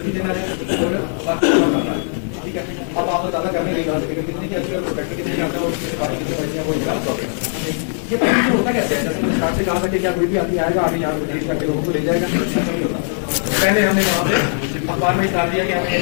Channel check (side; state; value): right; silent; digital silence